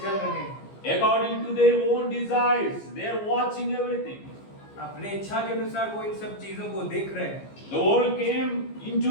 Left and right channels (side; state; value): right; late; 15 ms